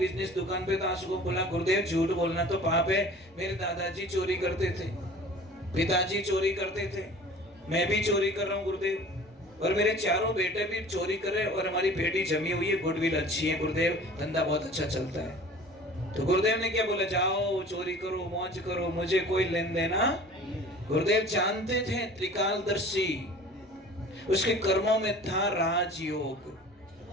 दुकान पे तो आ सकूं। बोला गुरुदेव झूठ बोलना तो पाप है, मेरे दादाजी चोरी करते थे, पिताजी चोरी करते थे, मैं भी चोरी कर रहा हूँ गुरुदेव, और मेरे चारों बेटे भी चोरी कर रहे, और हमारी बेटी जमी हुई है, गुडविल अच्छी है गुरुदेव, धंधा बहुत अच्छा चलता है। तो गुरुदेव ने क्या बोला, जाओ चोरी करो, मौज करो, मुझे कोई लेन देना। गुरुदेव जानते थे त्रिकालदर्शी, उसके कर्मों में था राजयोग।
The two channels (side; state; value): both; normal; correlation 0.44